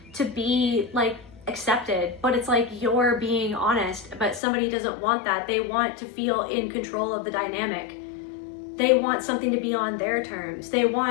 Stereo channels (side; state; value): right; drops out; at 4.4 s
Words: be like accepted. But it's like you're being honest, but somebody doesn't want that. They want to feel in control of the dynamic. They want something to be on their terms. They